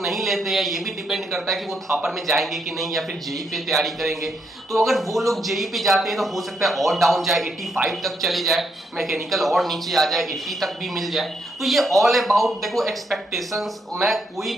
नहीं लेते हैं, ये भी डिपेंड करता है कि वो थापर में जाएंगे कि नहीं, या फिर जेई पे तैयारी करेंगे। तो अगर वो लोग जेई पे जाते हैं तो हो सकता है और डाउन जाए, 85 तक चले जाए, मैकेनिकल और नीचे आ जाए, 80 तक भी मिल जाए। तो ये ऑल अबाउट देखो एक्सपेक्टेशंस, मैं कोई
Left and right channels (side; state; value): both; normal; correlation 0.77